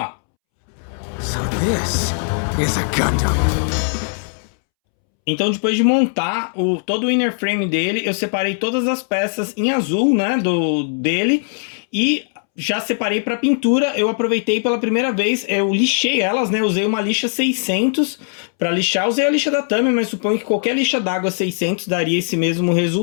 So this is a Gundam. Então depois de montar todo o inner frame dele, eu separei todas as peças em azul, né, dele, e já separei para pintura. Eu aproveitei pela primeira vez, eu lixei elas, né, usei uma lixa 600 para lixar. Usei a lixa da Tamiya, mas suponho que qualquer lixa d'água 600 daria esse mesmo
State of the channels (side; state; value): right; silent; 66 dB below the other